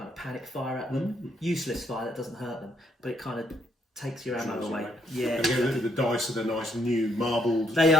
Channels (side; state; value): both; normal; correlation 0.72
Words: of panic fire at them. Useless fire, that doesn't hurt them, but it kind of takes your ammo away. Yeah. And again, the dice are the nice new marbled. They